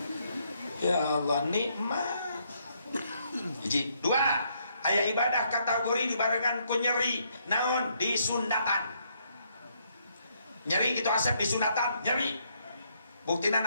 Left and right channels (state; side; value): inverted; both; correlation -0.73